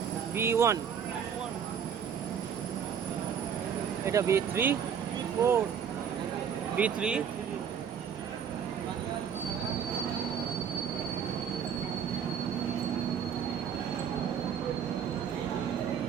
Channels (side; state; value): left; quieter; 7.8 dB